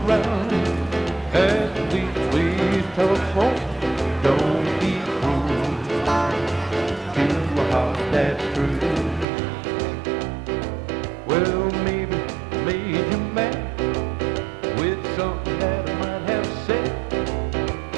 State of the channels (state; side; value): drops out; left; at 9.2 s